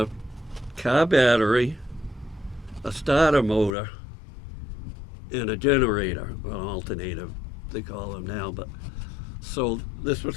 car battery, a starter motor, and a generator, an alternator, they call them now. But so this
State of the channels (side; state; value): right; drops out; at 3.7 s